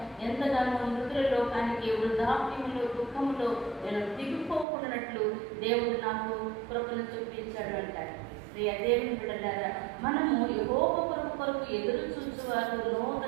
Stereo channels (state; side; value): drops out; left; at 4.7 s